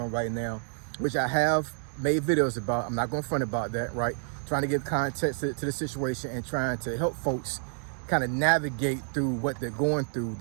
right now, which I have made videos about. I'm not going to front about that, right? Trying to give context to the situation and trying to help folks kind of navigate through what they're going through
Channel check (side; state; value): left; silent; 59 dB below the other